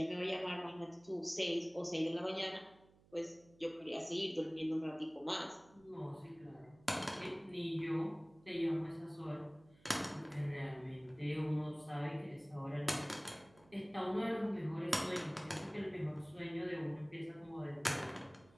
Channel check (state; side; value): noise; right; hum, 27 dB below the sound